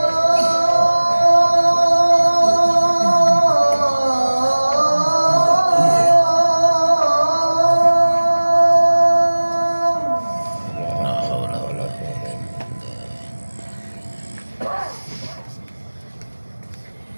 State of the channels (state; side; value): inverted; both; correlation -1.00